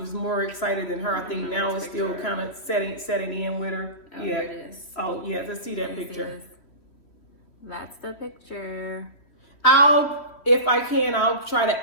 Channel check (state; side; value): late; right; 3.1 ms